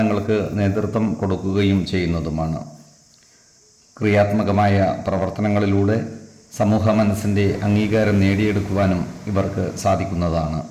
നേതൃത്വം കൊടുക്കുകയും ചെയ്യുന്നതുമാണ്. ക്രിയാത്മകമായ പ്രവർത്തനങ്ങളിലൂടെ സമൂഹ മനസ്സിൻ്റെ അംഗീകാരം നേടിയെടുക്കുവാനും ഇവർക്ക് സാധിക്കുന്നതാണ്.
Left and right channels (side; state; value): both; identical; correlation 1.00